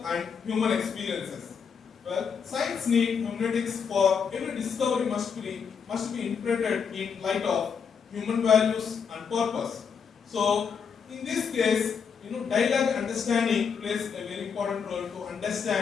and human experiences. Well, science needs hermeneutics for every discovery must be interpreted in light of human values and purpose. So, in this case, dialogue understanding plays a very important role to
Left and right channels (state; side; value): quieter; right; 6.5 dB